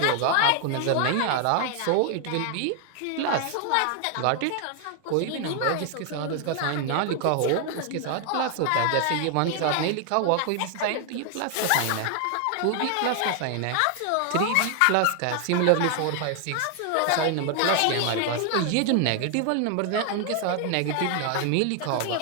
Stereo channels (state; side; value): different; both; correlation 0.00